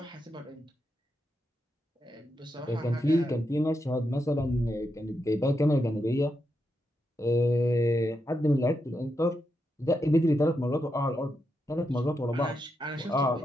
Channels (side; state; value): both; normal; correlation 0.84